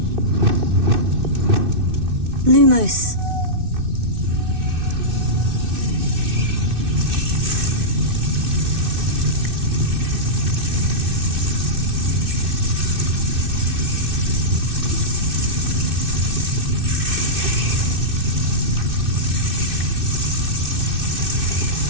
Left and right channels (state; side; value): late; left; 2.6 ms